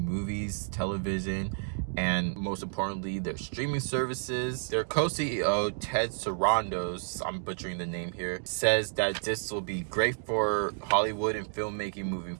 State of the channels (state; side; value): silent; left; digital silence